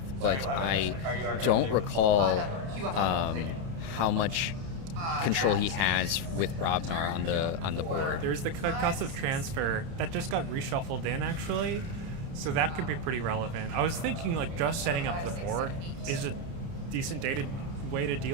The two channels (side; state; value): left; late; 30 ms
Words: but I don't recall how much control he has with Brobnar on the board. There's the concussive transfer that just got reshuffled in, actually, so that could be pretty relevant. I was thinking just setting up the board is a decent way to